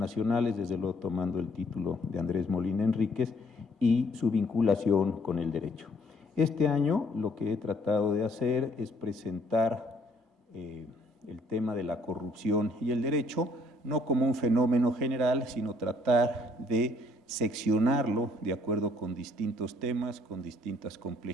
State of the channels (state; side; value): normal; both; correlation 0.63